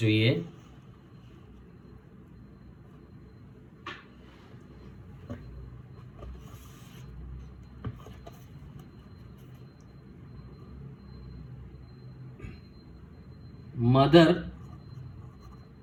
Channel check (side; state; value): both; identical; correlation 1.00